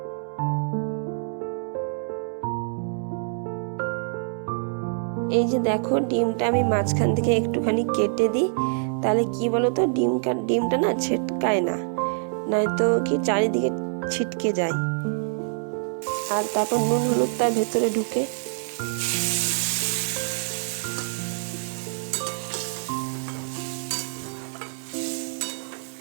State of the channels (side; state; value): left; silent; 61 dB below the other